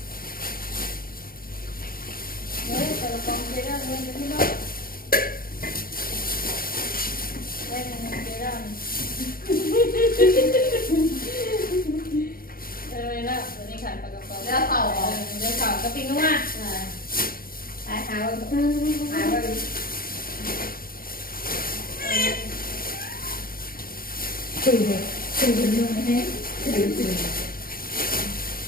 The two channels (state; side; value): late; right; 0.42 ms